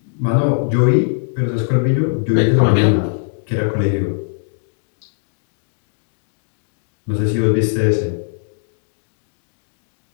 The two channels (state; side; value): silent; right; digital silence